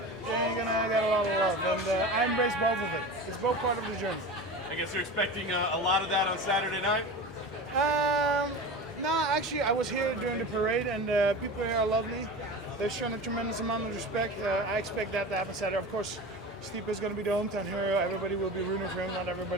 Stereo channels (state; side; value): normal; both; correlation 0.30